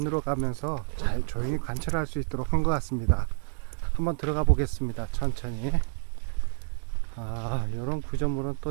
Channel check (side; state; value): left; silent; 59 dB below the other